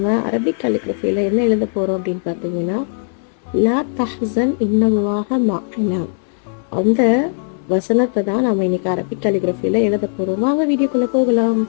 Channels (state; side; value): silent; right; digital silence